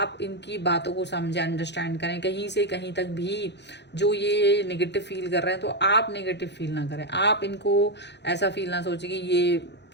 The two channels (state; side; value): late; right; 0.50 ms